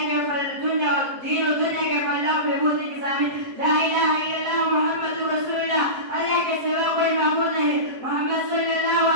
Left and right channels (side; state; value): left; late; 7.7 ms